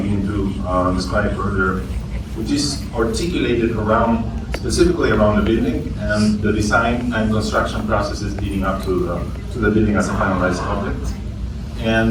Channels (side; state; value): both; identical; correlation 1.00